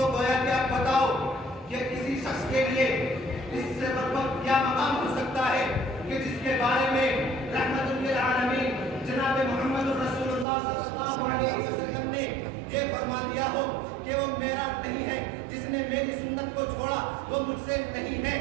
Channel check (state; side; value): drops out; left; at 10.5 s